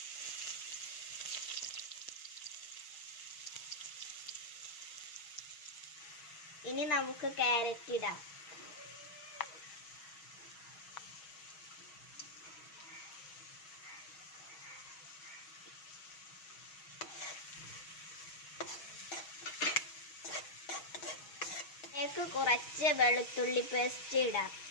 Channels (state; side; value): late; right; 6.2 ms